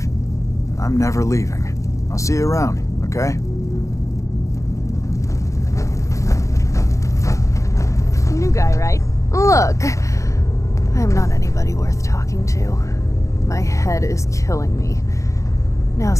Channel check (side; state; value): right; late; 0.15 ms